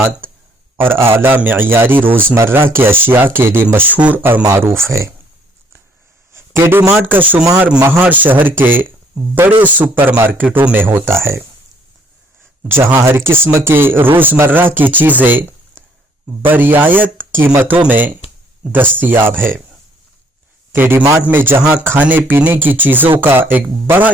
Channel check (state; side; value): normal; both; correlation 0.64